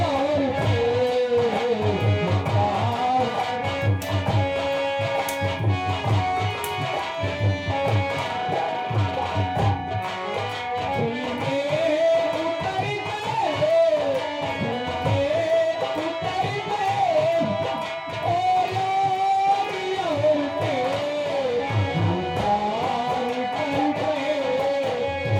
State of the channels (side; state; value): both; identical; correlation 1.00